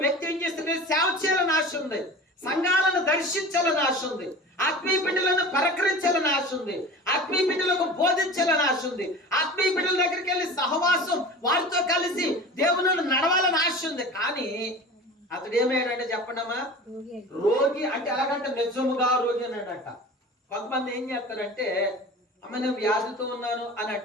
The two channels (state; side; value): normal; both; correlation 0.36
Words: వ్యక్తి ఏం చేస్తుంది? సేవ చేయాలని ఆశ ఉంది, సంఘాలను దర్శించాలని ఆశ ఉంది, ఆత్మీయ బిడ్డలను పరకరించాలని ఆశ ఉంది, ఆత్మీయ బిడ్డలకు బోధించాలని ఆశ ఉంది, ఆత్మీయ బిడ్డల దగ్గరికి వెళ్ళి సహవాసం వారితో కలిసి దేవుని నడవాలని ఆశ ఉంది. కానీ అతడు ఏమయ్యాడంటే చెప్పండమ్మా, రోగి. అంటే ఎలాగంటే నిజముగా రోగి అన్నాడట. కొంతమంది ఏం చేస్తారంటే అమ్మ నేను వ్యాధితో ఉన్నాను అని